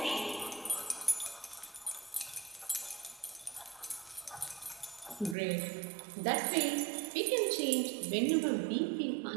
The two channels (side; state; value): left; drops out; at 5.4 s